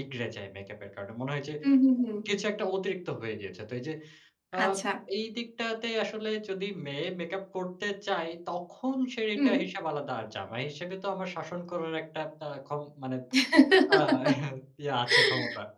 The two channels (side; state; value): both; identical; correlation 1.00